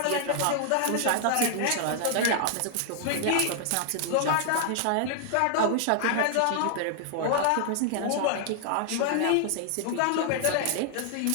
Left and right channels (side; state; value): both; different; correlation 0.00